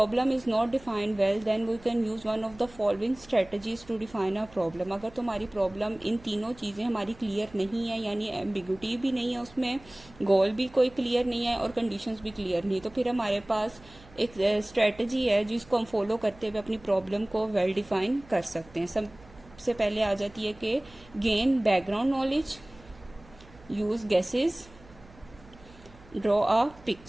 is not defined well then we can use one of the following strategies to define a problem. अगर तुम्हारी प्रॉब्लम इन तीनों चीजें हमारी क्लियर नहीं है, यानी एम्बिग्यूटी भी नहीं है उसमें, गोल भी कोई क्लियर नहीं है और कंडीशंस भी क्लियर नहीं है, तो फिर हमारे पास एक स्ट्रेटजी है जिसको हम फॉलो करते हुए अपनी प्रॉब्लम को वेल डिफाइन कर सकते हैं। सबसे पहले आ जाती है कि gain background knowledge, use guesses, draw a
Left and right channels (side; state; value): right; noise; hum, 23 dB below the sound